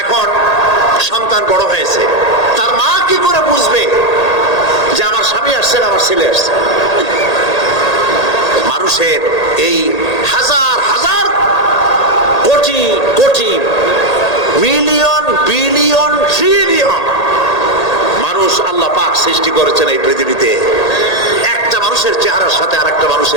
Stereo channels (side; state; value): right; late; 1.8 ms